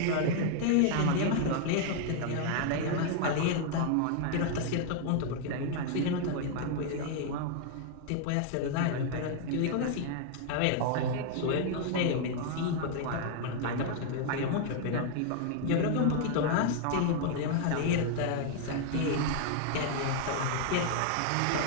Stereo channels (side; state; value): both; different; correlation 0.00